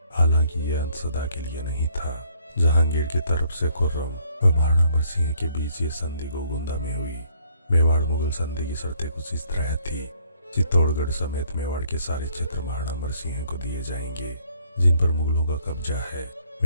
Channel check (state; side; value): inverted; both; correlation -0.65